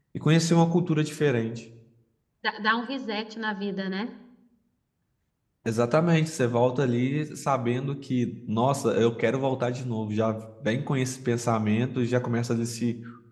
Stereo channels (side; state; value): both; identical; correlation 1.00